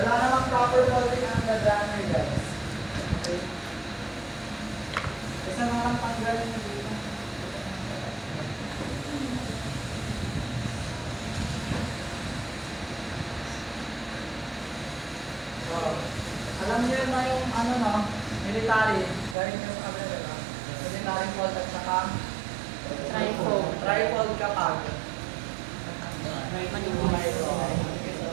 namang proper After folding ang ladder guys. Okay. Isa na lang tanggalin nyo dito. Wow. Alam niyo na yung ano no, military, galing ka sa kabila diba? Military fold at saka Trifold. trifold kapag.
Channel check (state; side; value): drops out; left; at 19.4 s